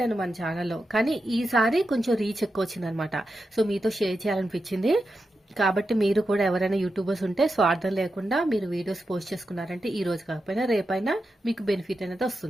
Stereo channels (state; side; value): normal; both; correlation 0.89